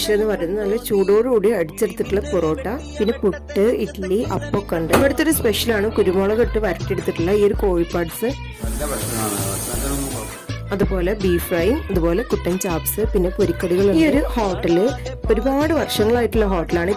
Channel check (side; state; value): both; identical; correlation 1.00